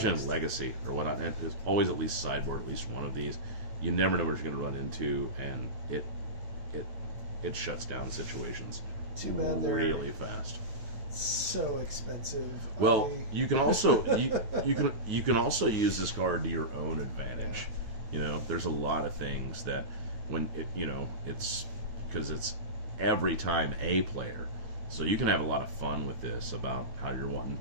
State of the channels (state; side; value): late; left; 9.5 ms